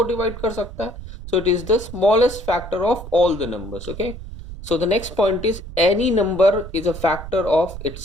डिवाइड कर सकता है. So it is the smallest factor of all the numbers. Okay, so the next point is any number is a factor of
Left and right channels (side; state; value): right; noise; rumble, 11 dB below the sound